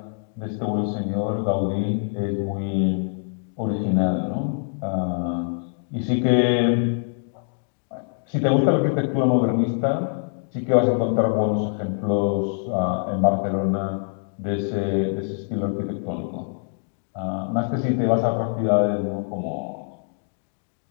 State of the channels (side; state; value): right; silent; digital silence